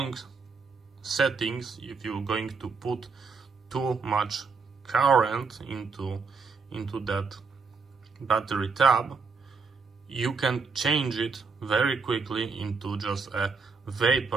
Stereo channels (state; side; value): quieter; left; 4.9 dB